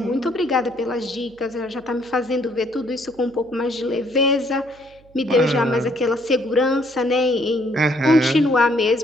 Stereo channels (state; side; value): noise; right; hum, 28 dB below the sound